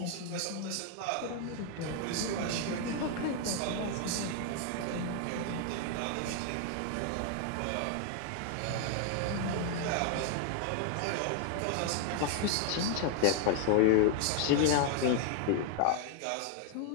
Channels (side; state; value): both; different; correlation 0.00